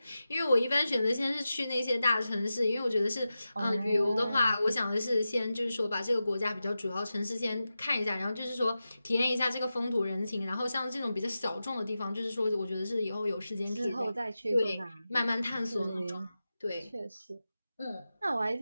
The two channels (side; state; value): both; inverted; correlation -0.93